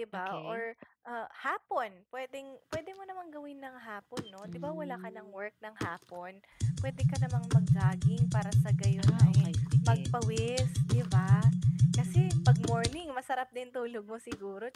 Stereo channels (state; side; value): identical; both; correlation 1.00